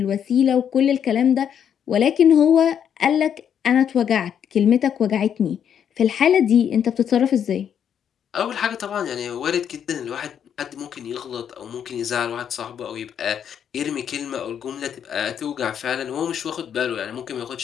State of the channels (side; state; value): right; quieter; 8.6 dB